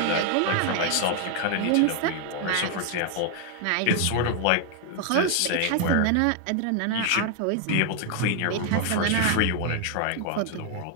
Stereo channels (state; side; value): different; both; correlation 0.00